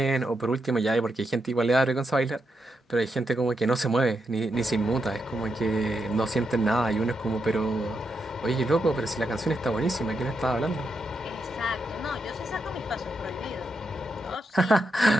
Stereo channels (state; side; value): normal; both; correlation 0.83